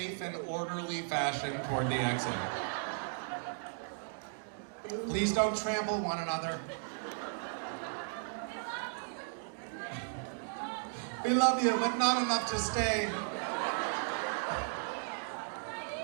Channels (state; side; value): silent; left; digital silence